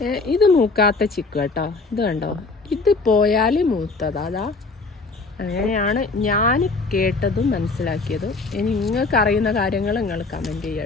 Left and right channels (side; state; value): right; quieter; 3.8 dB